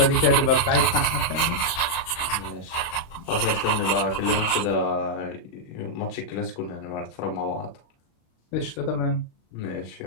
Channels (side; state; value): right; late; 35 ms